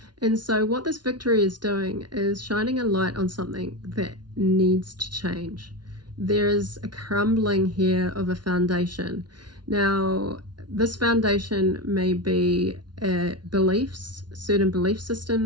And so what this victory is doing is shining a light on something that needs to change. There is a crumbling here of a foundation. Now, this foundation may be beliefs, certain belief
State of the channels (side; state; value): left; late; 0.70 ms